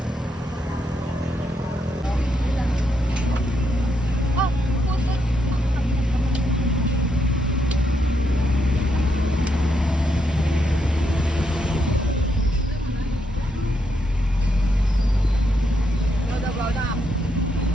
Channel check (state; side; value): normal; both; correlation 0.79